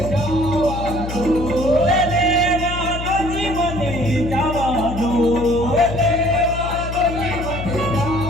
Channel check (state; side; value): noise; left; hum, 7 dB below the sound